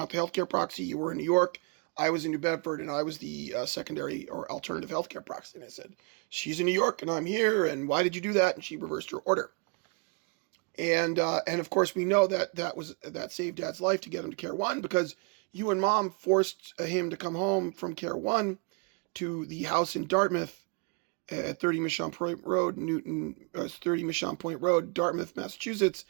the healthcare proxy. You were in New York. I was in New Bedford, and I was the secondary or alternative healthcare proxy. And I said, she's in New York, and I'm here, and why did you do that? And she reversed her order. And of course, we know that saved Dad's life to get him to Care One because you and Mom forced him to come home from Care One to the house in Dartmouth at 30 Mission Point Road, 30 Mission Point Road, Dartmouth, Massachusetts.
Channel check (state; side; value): quieter; left; 33.1 dB